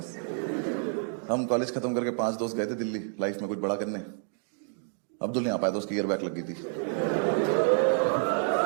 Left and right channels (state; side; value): silent; left; 59 dB below the other